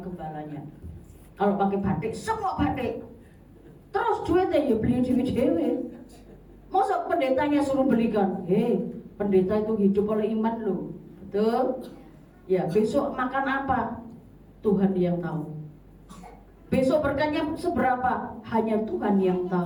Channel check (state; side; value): identical; both; correlation 1.00